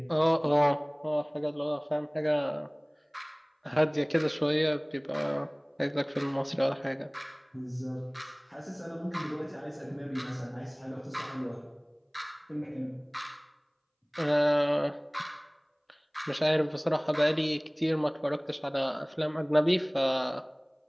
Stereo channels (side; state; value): both; identical; correlation 1.00